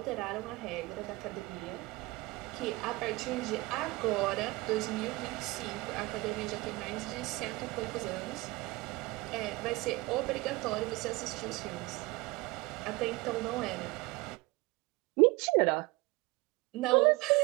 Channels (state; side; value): quieter; left; 22.5 dB